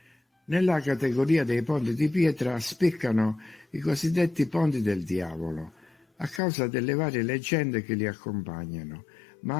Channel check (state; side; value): drops out; right; at 6.4 s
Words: Nella categoria dei ponti di pietra spiccano i cosiddetti ponti del diavolo, a causa delle varie leggende che li accompagnano,